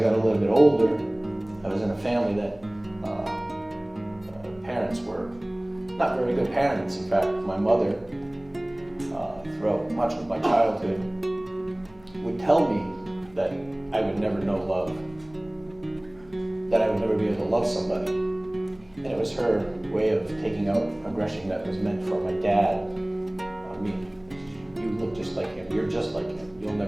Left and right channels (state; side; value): noise; left; hum, 26 dB below the sound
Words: got a little bit older, I was in a family that parents were not very good parents. In fact, my mother, throughout much of my childhood, would tell me that I would never know love, that I would never be able to love somebody. And it was her way of taking out aggression that was meant for my dad on me. You look just like him, you're just like him, you'll